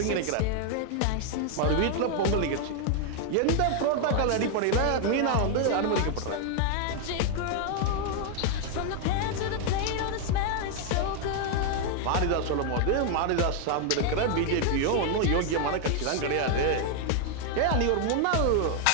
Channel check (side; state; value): both; different; correlation 0.00